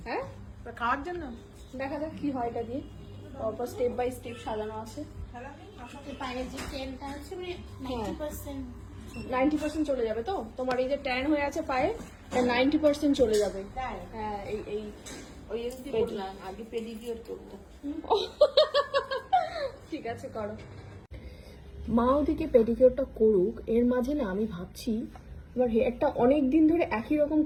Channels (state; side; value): identical; both; correlation 1.00